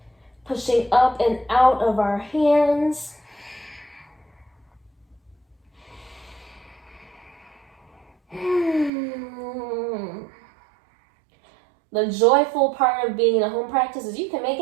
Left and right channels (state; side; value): drops out; left; at 8.9 s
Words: pushing up and out of our hands. The joyful part of being in a home practice is you can make